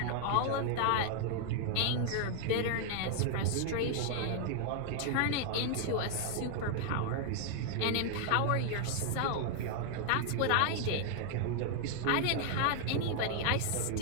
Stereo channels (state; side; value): different; both; correlation 0.00